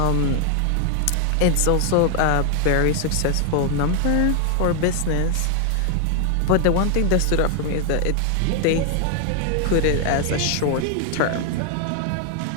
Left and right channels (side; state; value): both; different; correlation 0.00